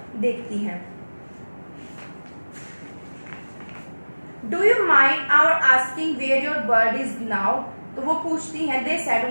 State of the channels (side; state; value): both; inverted; correlation -1.00